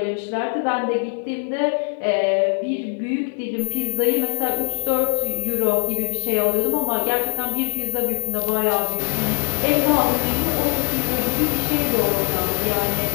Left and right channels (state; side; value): silent; right; 63 dB below the other